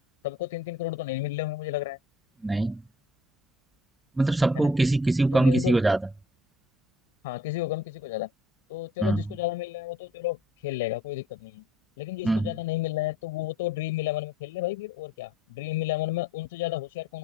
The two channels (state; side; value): normal; both; correlation 0.58